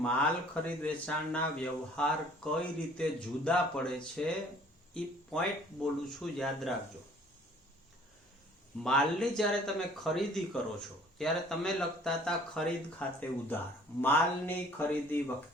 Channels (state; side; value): normal; both; correlation 0.55